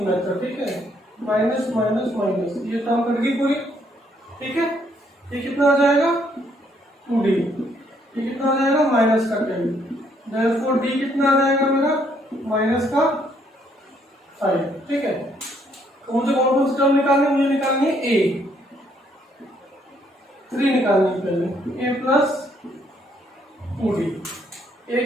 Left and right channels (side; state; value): both; normal; correlation 0.69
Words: मेथड। ठीक है, माइनस माइनस माइनस, ये टर्म कट गई पूरी। ठीक है, ये कितना आ जाएगा? 2d। ये कितना आ जाएगा? माइनस का 10। देयरफॉर d कितना आ जाएगा मेरा? माइनस का 5। ठीक है, तो मुझे कौन सी टर्म निकालनी है? मुझे निकालनी है a। 3 निकालनी है पहले, a प्लस 2d। a